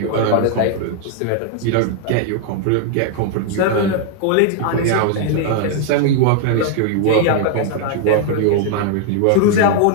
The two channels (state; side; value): different; both; correlation 0.00